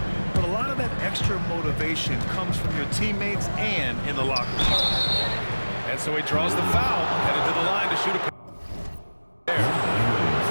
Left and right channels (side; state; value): both; inverted; correlation -1.00